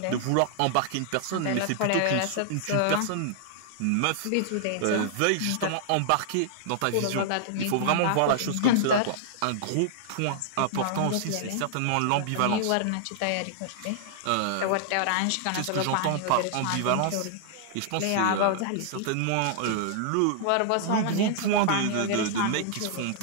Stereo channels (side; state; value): both; different; correlation -0.01